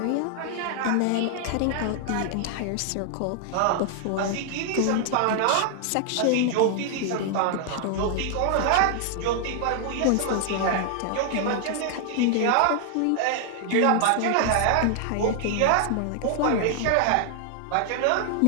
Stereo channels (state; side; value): different; both; correlation 0.00